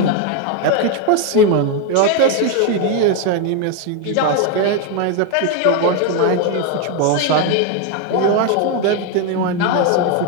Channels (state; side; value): different; both; correlation 0.02